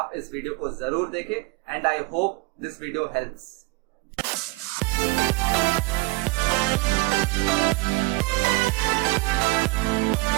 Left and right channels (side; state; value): left; quieter; 23.8 dB